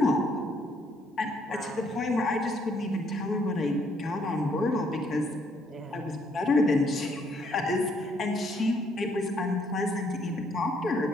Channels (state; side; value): normal; both; correlation 0.69